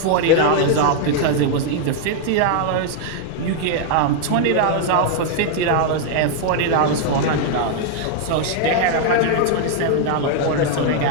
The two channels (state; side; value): different; both; correlation 0.00